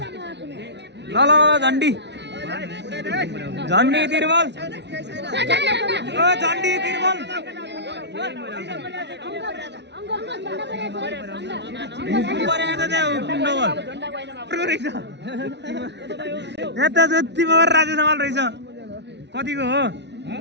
ल ल झन्डी झन्डी तिरबल झन्डी तिरबल हुकुम परेको त त्यहाँ हुकुम डबल रहेछ यहाँ त जति मगर राजा समाल रहेछ कतिको हो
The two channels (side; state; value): left; late; 0.50 ms